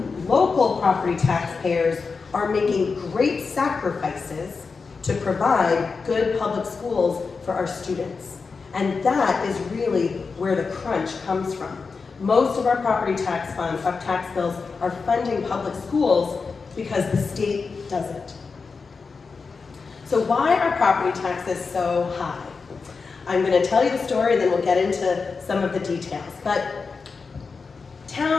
local property taxpayers are making great sacrifices to provide good public schools for our students. And that is really where the crunch comes from. Most of our property tax funds, our tax bills, are funding public schools because the state doesn't. So why are property taxes so high? I'm going to tell you the story and then we'll get into some of the details. But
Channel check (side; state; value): right; quieter; 4.8 dB